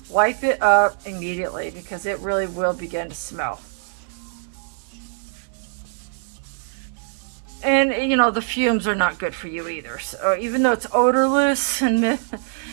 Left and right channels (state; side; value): silent; left; digital silence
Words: Wipe it up immediately because it really will begin to smell. And the fumes are not good for you either. So even though it's odorless and